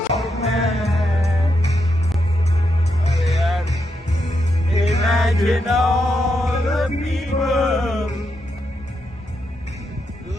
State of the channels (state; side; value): normal; both; correlation 0.83